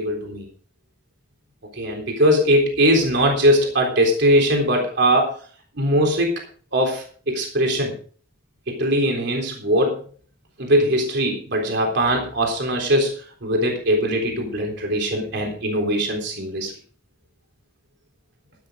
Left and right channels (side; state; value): both; normal; correlation -0.06